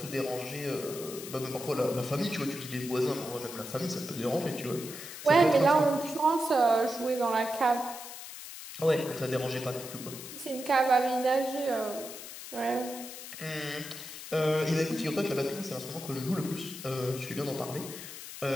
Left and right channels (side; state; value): left; noise; hiss, 11 dB below the sound